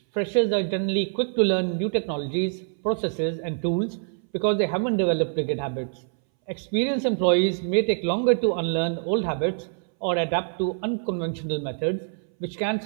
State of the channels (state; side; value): silent; left; 62 dB below the other